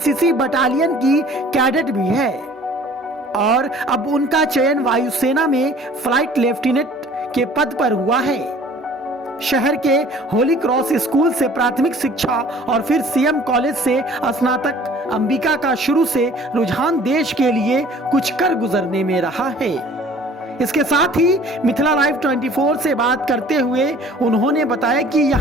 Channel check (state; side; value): normal; both; correlation 0.50